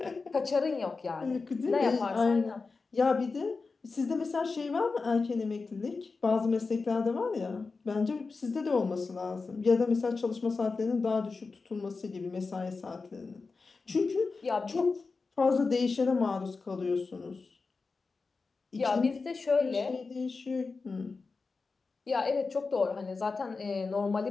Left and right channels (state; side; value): quieter; right; 4.3 dB